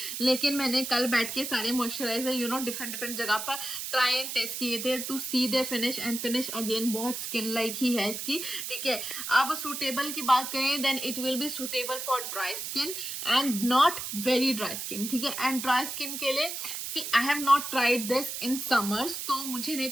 लेकिन मैंने कल बैठ के सारे मॉइस्चराइजर डिफरेंट डिफरेंट जगह पर ट्राई एंड टेस्ट किए थे to see their finish. And finish again बहुत स्किन लाइक ही है इसकी, ठीक है। अब सूटेबल की बात करें then it will be suitable for dry skin and not very dry skin, ठीक है। एंड ड्राई स्किन के लिए see I have not tried this in summers, तो मुझे नहीं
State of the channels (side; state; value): right; noise; hiss, 5 dB below the sound